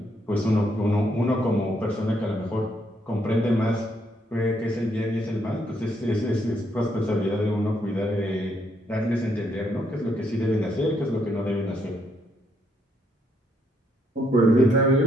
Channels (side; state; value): both; normal; correlation 0.73